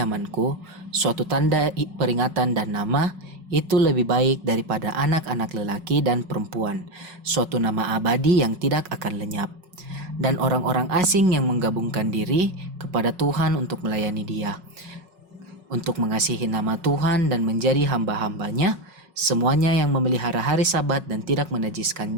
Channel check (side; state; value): left; late; 5.4 ms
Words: suatu tanda peringatan dan nama, itu lebih baik daripada anak-anak lelaki dan perempuan, suatu nama abadi yang tidak akan lenyap. Dan orang-orang asing yang menggabungkan diri kepada Tuhan untuk melayani Dia, untuk mengasihi nama Tuhan dan menjadi hamba-hambanya, semuanya yang memelihara hari Sabat dan tidak